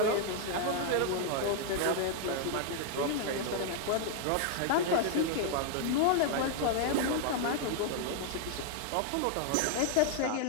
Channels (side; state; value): both; different; correlation 0.00